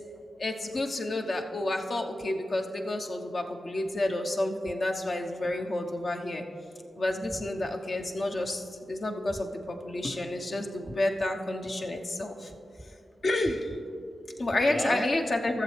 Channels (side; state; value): both; normal; correlation 0.93